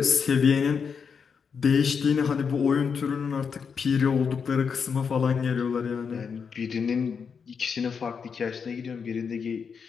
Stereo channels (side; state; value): right; quieter; 6.2 dB